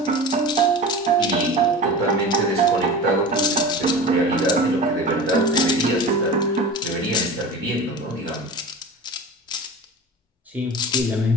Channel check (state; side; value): normal; both; correlation 0.33